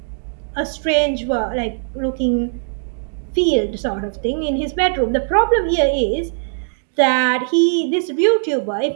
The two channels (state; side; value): silent; left; digital silence